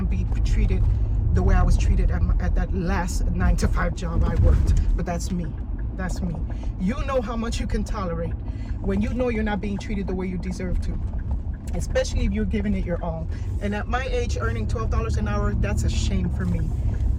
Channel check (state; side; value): identical; both; correlation 1.00